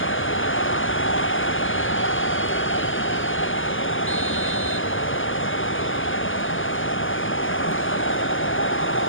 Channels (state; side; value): late; right; 0.58 ms